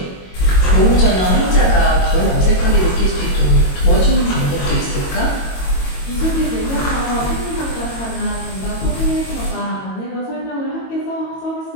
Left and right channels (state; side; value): late; right; 22 ms